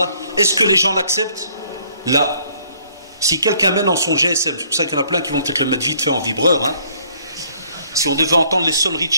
est-ce que les gens l'acceptent? Là, si quelqu'un met dans son GSM, c'est pour ça qu'il y en a plein qui vont peut-être le mettre vite fait en vibreur, hein. Si on devait entendre les sonneries de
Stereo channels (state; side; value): inverted; both; correlation -0.62